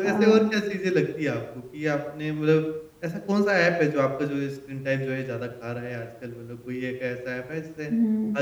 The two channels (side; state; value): both; identical; correlation 1.00